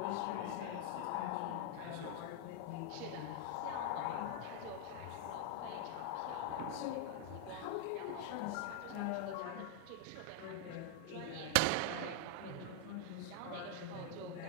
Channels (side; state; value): both; different; correlation 0.00